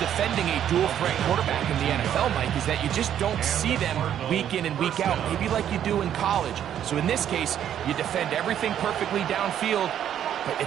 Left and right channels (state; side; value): quieter; left; 10.1 dB